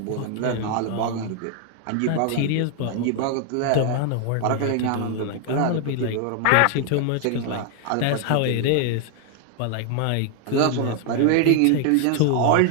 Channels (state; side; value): different; both; correlation 0.00